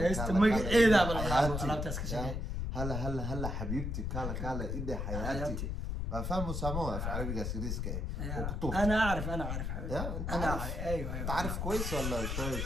magaceedaaba la dhahaa alaabtaas ka shaqeey هلا هلا هلا حبيبتي كالا كالا إيدي حياتي حياتي. ما فاهموا ساموها في عربي سيريسك ايه وكتوب انا اعرف انا اعرف حبيبي يا انت انا عارف اعرف ايوه انت ايوه عارف كويس ولا شوي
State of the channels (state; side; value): noise; left; rumble, 2 dB below the sound